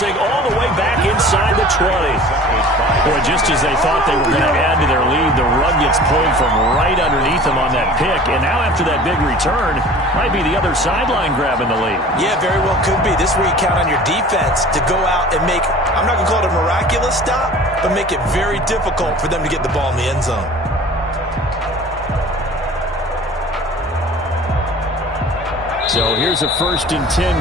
all the way back inside the 20. Boy, just as they thought they were going to add to their lead, the rug gets pulled from right underneath them on that pick. And now after that big return, might be the other sideline grabbing the lead. Yeah, very well could be. This is where you count on your defense to go out and make, I'm not going to call it a miraculous stop, but make it very difficult for them to get the ball in the end zone. So here's a 1st and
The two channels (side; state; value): both; normal; correlation 0.44